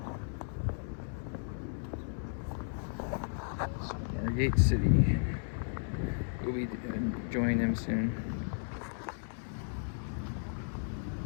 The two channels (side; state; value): right; silent; 55 dB below the other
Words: Gate City. We'll be joining them soon.